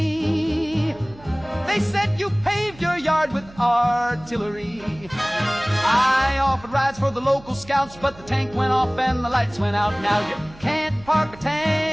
They said you paved your yard with artillery. I offered rides for the local scouts, but the tank went off and the lights went out. Now you can't park a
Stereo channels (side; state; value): right; noise; hum, 21 dB below the sound